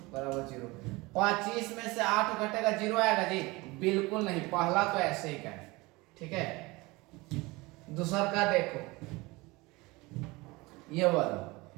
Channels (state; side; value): quieter; left; 23.1 dB